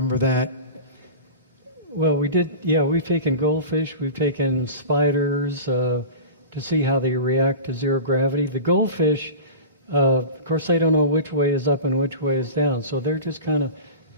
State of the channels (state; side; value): inverted; both; correlation -0.32